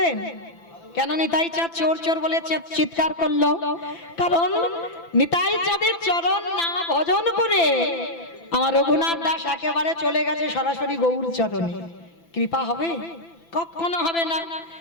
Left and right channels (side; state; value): right; late; 6.0 ms